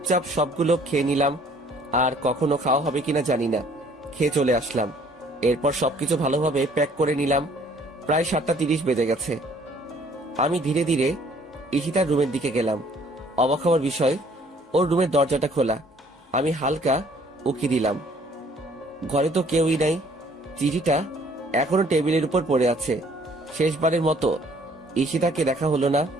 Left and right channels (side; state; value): both; normal; correlation 0.59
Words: সবগুলো খেয়ে নিলাম। আর কখনো খাওয়া হবে কিনা জানি না, খেয়ে চলে আসলাম। এরপর সবকিছু ভালোভাবে প্যাক করে নিলাম। প্রায় 7টা 30 বেজে গেছে। আমি ধীরে ধীরে ঈশিতার রুমের দিকে গেলাম। অবাক হওয়ার বিষয়, ওর রুমের দরজাটা খোলা। আমি হালকা উকি দিলাম, ঘরে তো কেউই নাই। চিঠিটা এখনো টেবিলের উপর পড়ে আছে। শেষবারের মতো ঈশিতাকে দেখা হলো না।